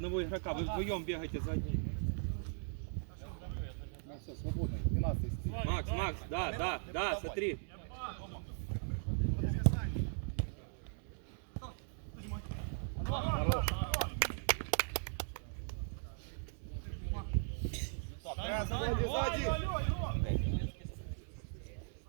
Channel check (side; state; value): left; silent; digital silence